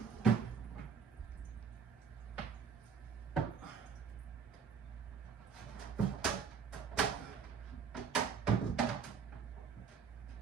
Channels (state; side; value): quieter; left; 6.5 dB